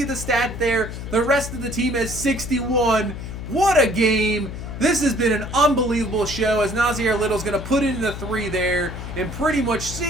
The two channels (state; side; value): noise; left; hum, 8 dB below the sound